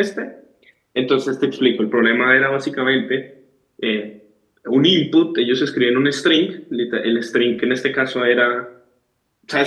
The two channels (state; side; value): identical; both; correlation 1.00